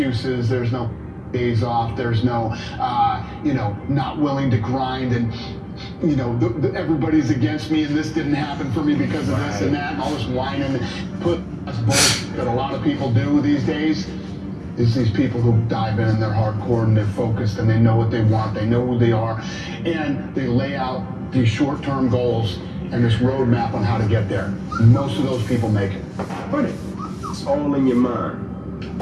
there's no days off, there's no, not willing to grind and, everybody's against me and this didn't happen for me because of this and that and all this whining. That's bullshit that a lot of people do these days. It's these people who dive in and they're hardcore and they're focused and they know what they want, they know who they are, and they lay out these short-term goals and this roadmap on how to get there. Most of those people make it. But it's all in your mind.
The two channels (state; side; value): identical; both; correlation 1.00